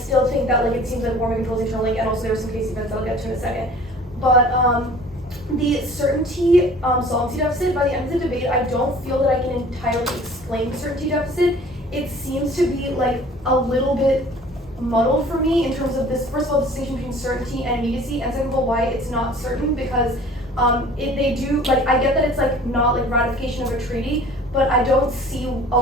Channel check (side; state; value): both; normal; correlation 0.48